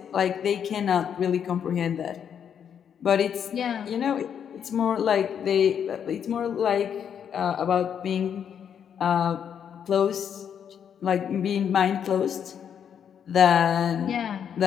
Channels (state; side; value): quieter; right; 8.2 dB